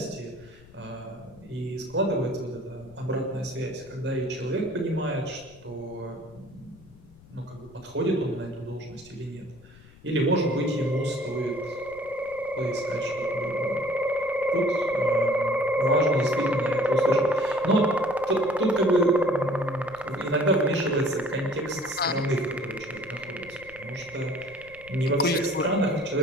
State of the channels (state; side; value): noise; left; rumble, 23 dB below the sound